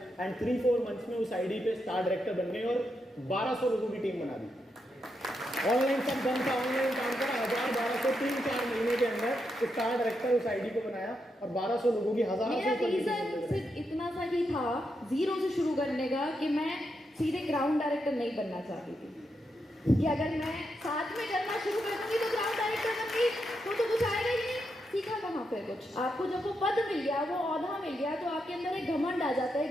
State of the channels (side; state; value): both; normal; correlation 0.83